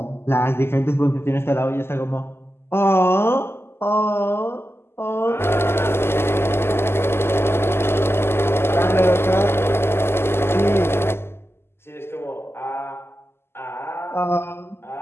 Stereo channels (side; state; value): right; late; 0.12 ms